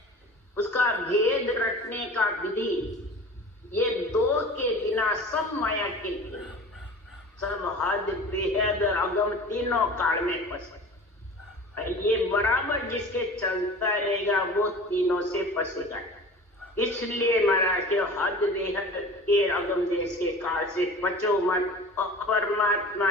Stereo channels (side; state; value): both; normal; correlation 0.39